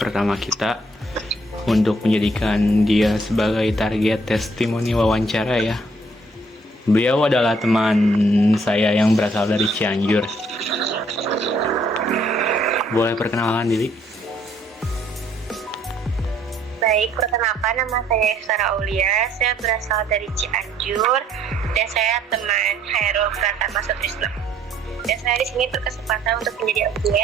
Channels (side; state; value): both; normal; correlation 0.65